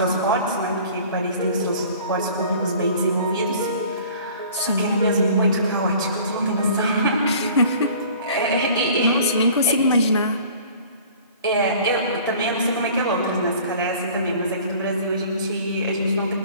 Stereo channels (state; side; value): inverted; both; correlation -0.48